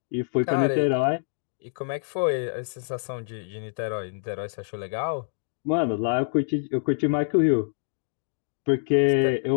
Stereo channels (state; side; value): silent; right; digital silence